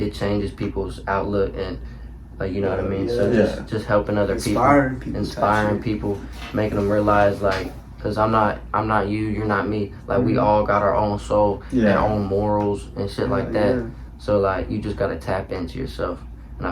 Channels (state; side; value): identical; both; correlation 1.00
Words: changes people's outlook and, like, you know what I mean? So just helping other inspiring people, making them realize, like, because I'm not you, you're not me. Like, we all got our own soul and our own morals and shit like that. So, like, you just got to tap into yourself. And